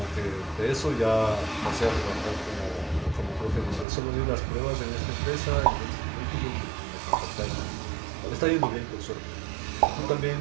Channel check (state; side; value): drops out; left; at 3.9 s